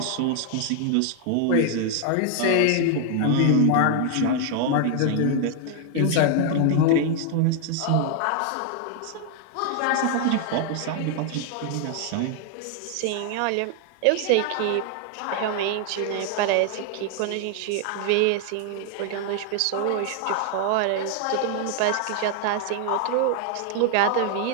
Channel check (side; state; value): both; different; correlation 0.00